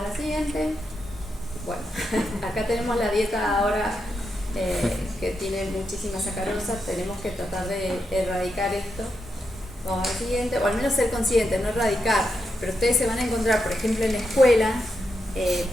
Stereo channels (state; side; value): normal; both; correlation 0.84